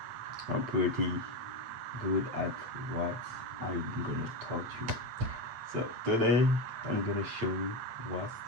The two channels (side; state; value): left; late; 8.9 ms